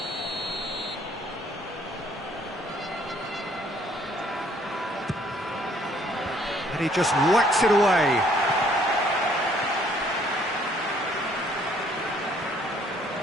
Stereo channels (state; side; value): normal; both; correlation 0.63